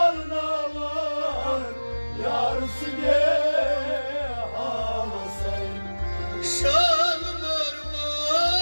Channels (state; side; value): inverted; both; correlation -1.00